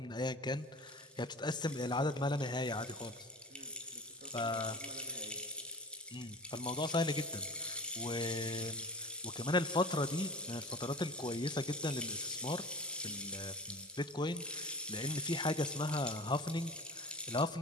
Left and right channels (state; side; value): normal; both; correlation 0.36